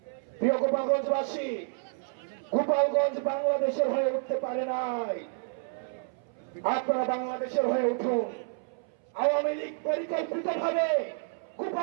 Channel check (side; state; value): left; silent; 58 dB below the other